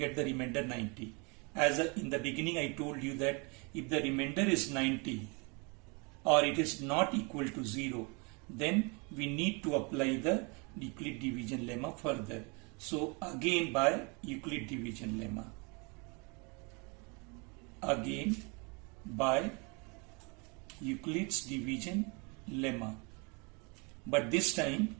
the remainder 90. In the beginning I told you that if the remainder is 90 or it is not equal to 0, then we need to apply the Euclid division lemma further. So again by Euclid division lemma. Again by Euclid's division lemma. But this time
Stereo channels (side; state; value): left; quieter; 31.2 dB